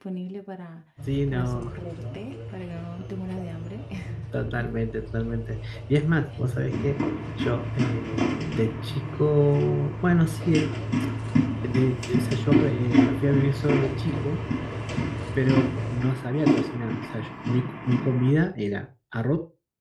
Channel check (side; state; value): both; identical; correlation 1.00